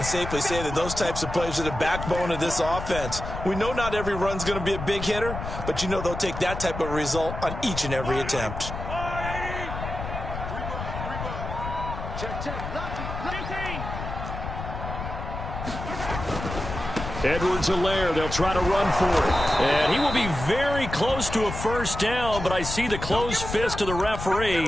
safely say that those types of plays are the backbone of this offense. We know not every run's going to be a big hitter, but you know they'll take that type of result on each and every attempt. Edwards-Helaire, they'll try to run for it. And he will be very close to a first down, but I see the closed fist of the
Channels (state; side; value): noise; left; rumble, 7 dB below the sound